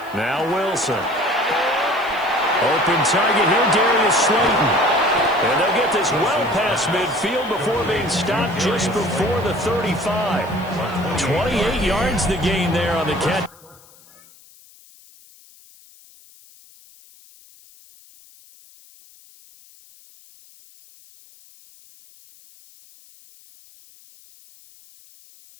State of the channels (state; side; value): noise; left; hiss, 26 dB below the sound